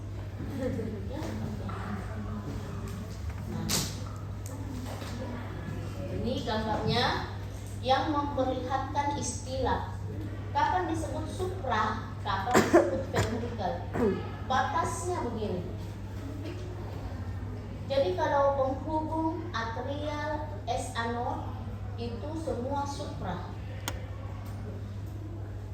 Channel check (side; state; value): both; identical; correlation 1.00